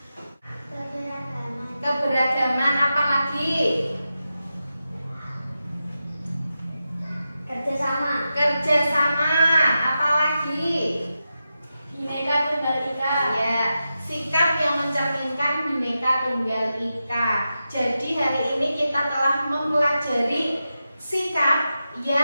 Keberagaman. Apa lagi? Kerjasama. Kerjasama. Apa lagi? Bhinneka Tunggal Ika. Ya, sikap yang mencerminkan Bhinneka Tunggal Ika. Jadi hari ini kita telah mempelajari sikap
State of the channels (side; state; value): both; inverted; correlation -0.90